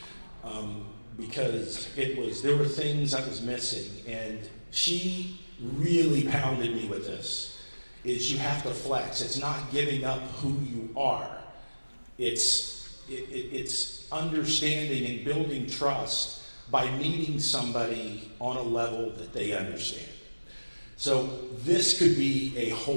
Because there were things I was missing, and she really pounded me with this, is you have to flex. It's not giving up who you are. It's understanding and building trust by meeting somebody on a level that they understand. So this could be a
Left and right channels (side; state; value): both; inverted; correlation -1.00